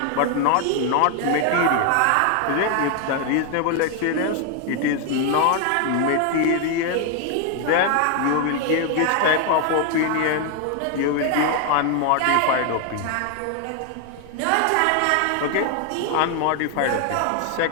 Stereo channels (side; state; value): both; different; correlation 0.01